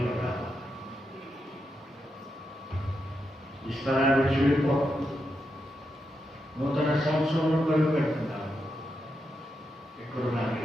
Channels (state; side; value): normal; both; correlation 0.85